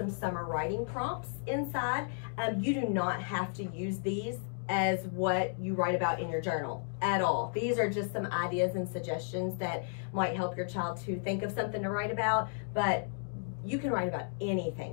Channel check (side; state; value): right; silent; digital silence